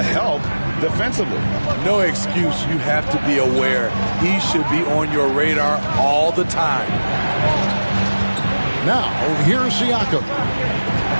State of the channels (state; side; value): inverted; both; correlation -1.00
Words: help defensively? No excuse. You have to be aware. He should be on your radar all the time. Now, here's Siakam.